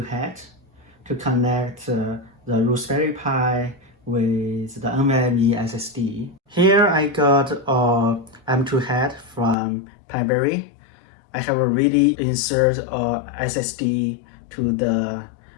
Hat to connect the Raspberry Pi with the NVMe SSD. Here I got a M.2 Hat from Piberry. I have already inserted a SSD to the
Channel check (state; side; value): drops out; right; at 9.6 s